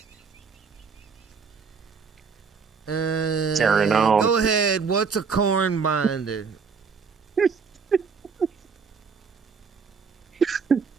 Carrying on. Go ahead. What's a corn binder?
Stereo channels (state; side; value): quieter; left; 5.5 dB